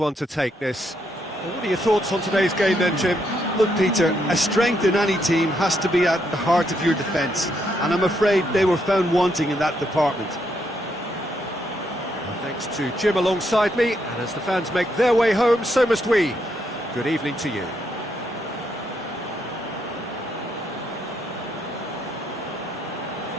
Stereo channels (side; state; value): both; normal; correlation 0.77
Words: to take, this. What are your thoughts on today's game then, Jim? Look, Peter, a strength in any team has to be at the heart of your defence, and I'm afraid they were found wanting in that department. Well, thanks to Jim alongside me, and as the fans make their way home, so must we. Good evening to you.